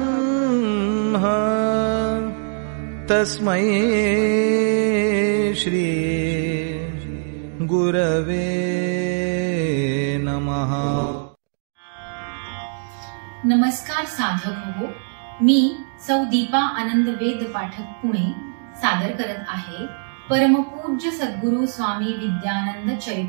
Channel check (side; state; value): left; silent; digital silence